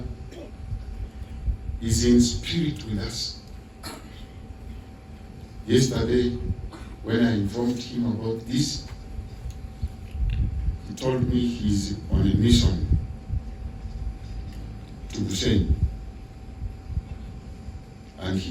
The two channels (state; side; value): identical; both; correlation 1.00